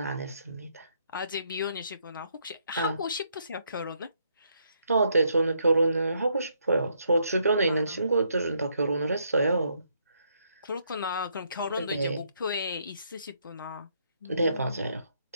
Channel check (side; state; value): both; inverted; correlation -0.73